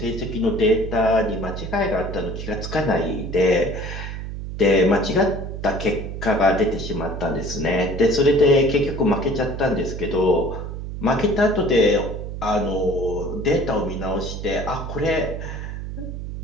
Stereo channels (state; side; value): noise; right; hum, 7 dB below the sound